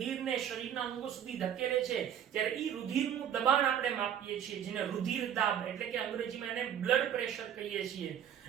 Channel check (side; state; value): left; quieter; 9.4 dB